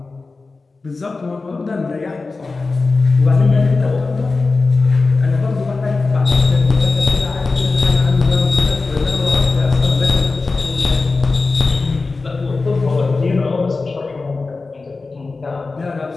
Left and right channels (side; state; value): right; quieter; 3.8 dB